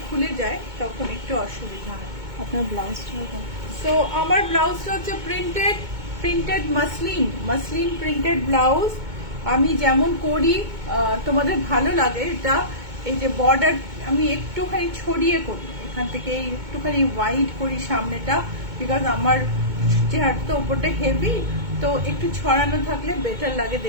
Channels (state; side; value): late; left; 2.2 ms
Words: খুলে যায়, তখন একটু অসুবিধা হয়। আপনার ব্লাউজটা সো আমার ব্লাউজটা হচ্ছে প্রিন্টেড মাসলিন প্রিন্টেড ব্লাউজ। আমি যেমন করি, তোমাদের ভালো লাগে এটা, এই যে বর্ডার আমি একটুখানি ছড়িয়ে করি, এখান থেকে একটুখানি ওয়াইড করি সামনেটা, বিকজ আমার চেহারাটা ওপরটা হেভি, তো একটু ছড়ানো থাকলে বেটার লাগে